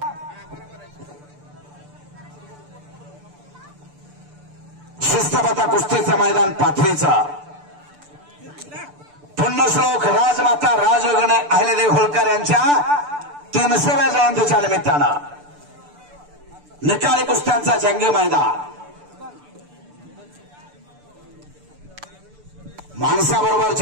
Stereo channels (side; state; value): left; late; 6.8 ms